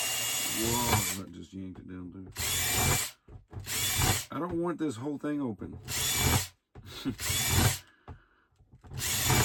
whoa, that just yanked it down too. I don't want this whole thing open.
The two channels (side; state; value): both; identical; correlation 1.00